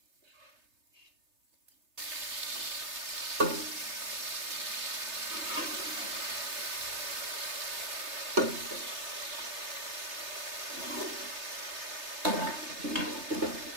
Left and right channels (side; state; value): left; late; 3.3 ms